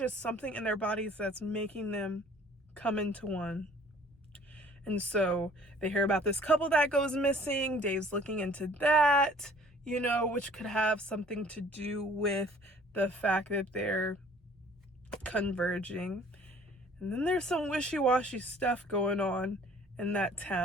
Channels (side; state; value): both; normal; correlation 0.53